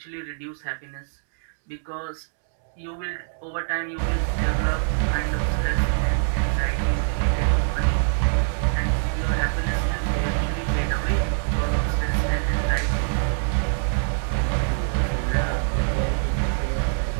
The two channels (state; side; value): silent; left; digital silence